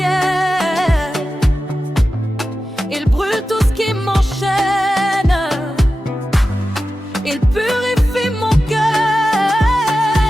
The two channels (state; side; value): normal; both; correlation 0.93